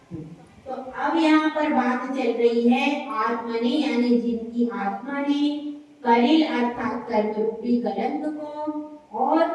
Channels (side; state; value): both; identical; correlation 1.00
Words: तो अब यहाँ पर बात चल रही है आत्मा ने, यानी जिनकी आत्मा ने कलिल अर्थात कर्म रूपी कलंक को